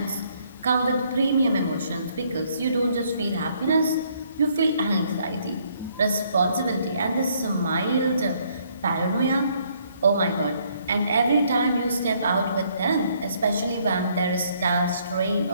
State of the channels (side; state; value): both; inverted; correlation -0.67